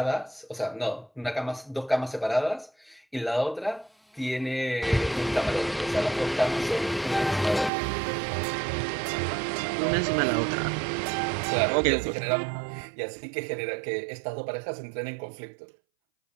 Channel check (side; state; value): left; drops out; at 7.7 s